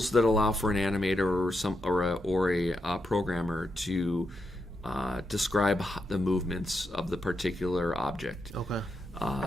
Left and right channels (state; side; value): normal; both; correlation 0.84